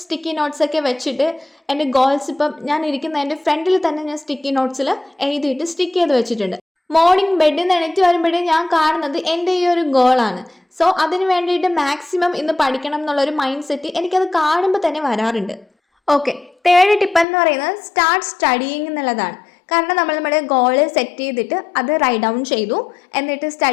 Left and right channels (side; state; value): right; drops out; at 17.2 s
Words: സ്റ്റിക്കി നോട്ട്സ് ഒക്കെ വെച്ചിട്ട് എൻ്റെ ഗോൾസ് ഇപ്പം ഞാൻ ഇരിക്കുന്ന എൻ്റെ ഫ്രണ്ടിൽ തന്നെ ഞാൻ സ്റ്റിക്കി നോട്ട്സിൽ എഴുതിയിട്ട് സ്റ്റിക്ക് ചെയ്ത് വെച്ചിട്ടുണ്ട്. മോർണിംഗ് ബെഡിൽ നിന്ന് എണീറ്റ് വരുമ്പോഴേ ഞാൻ കാണുന്നത് എൻ്റെ ഈ ഒരു ഗോളാണ്. സോ അതിന് വേണ്ടിയിട്ട് മാക്സിമം ഇന്ന് പഠിക്കണം എന്നുള്ളൊരു മൈൻഡ് സെറ്റ് എനിക്കത് കാണുമ്പോൾ തന്നെ വരാറുണ്ട്. ഓക്കെ, തേർഡ് ടിപ്പ് എന്ന് പറയുന്നത് സ്റ്റാർട്ട് സ്റ്റഡിയിങ് എന്നുള്ളതാണ്. കാരണം നമ്മുടെ ഗോള് സെറ്റ് ചെയ്തിട്ട് അത് റൈറ്റ് ഡൗൺ ചെയ്തു, എന്നിട്ട്